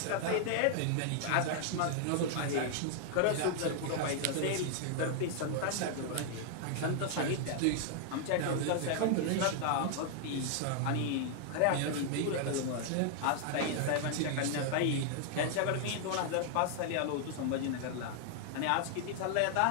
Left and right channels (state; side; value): different; both; correlation -0.01